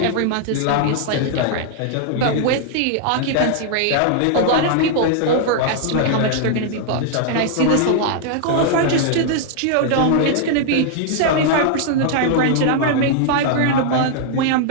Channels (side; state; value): both; different; correlation -0.01